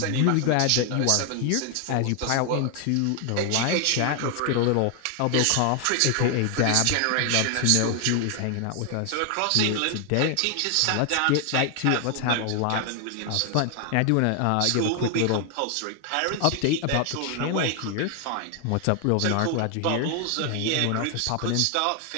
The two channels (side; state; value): both; different; correlation 0.00